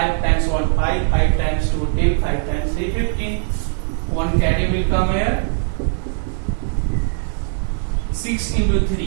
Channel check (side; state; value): left; silent; 56 dB below the other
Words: times 1 5. 5 times 2 10. 5 times 3 15. One carry will come here. 6 into